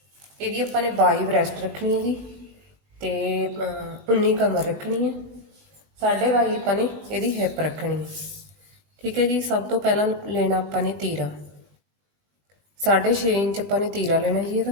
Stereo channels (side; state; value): left; late; 20 ms